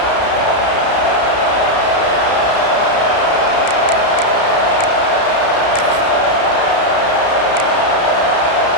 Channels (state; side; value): late; right; 32 ms